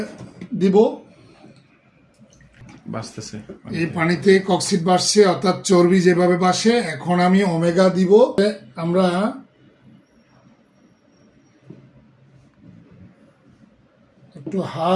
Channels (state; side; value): identical; both; correlation 1.00